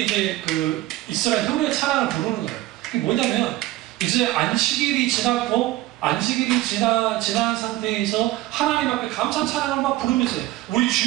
이제 그 이스라엘 형제 찬양을 부르는 거예요. 그게 뭐냐면 이제 안식일이 지났고 안식일이 지난 상태에서 하나님 앞에 감사 찬양을 막 부르면서 우리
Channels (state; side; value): quieter; left; 16.6 dB